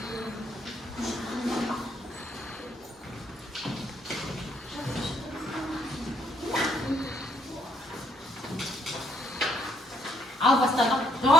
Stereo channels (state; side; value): normal; both; correlation 0.71